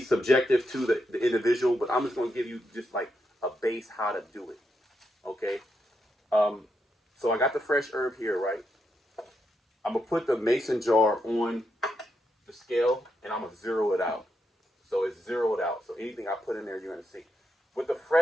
subjective to the individual, but I'm just going to give you just like a base how to do it. Okay? So I got the fresh herb here, right? I'm going to put the mason jar on the scale, and I'm going to zero it out. So it's zeroed out. So anything I put in there, you're going to see. With the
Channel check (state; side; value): normal; both; correlation 0.82